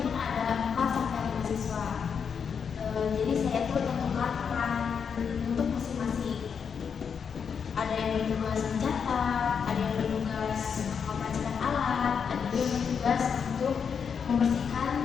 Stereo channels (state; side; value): quieter; right; 6.7 dB